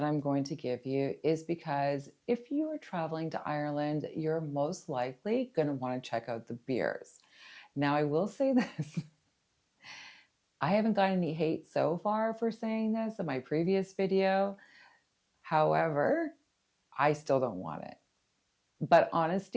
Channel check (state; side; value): identical; both; correlation 1.00